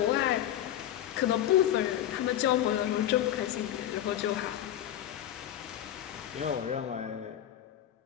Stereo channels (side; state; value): right; quieter; 11.8 dB